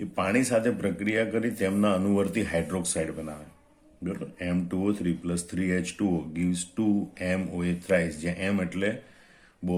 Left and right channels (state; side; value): identical; both; correlation 1.00